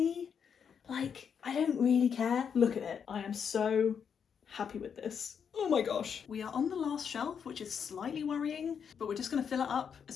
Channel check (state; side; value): quieter; right; 7.2 dB